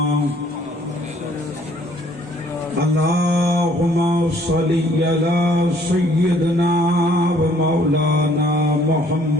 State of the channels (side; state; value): both; normal; correlation 0.61